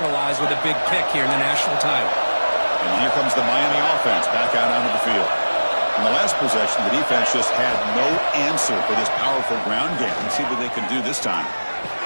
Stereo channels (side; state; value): both; inverted; correlation -1.00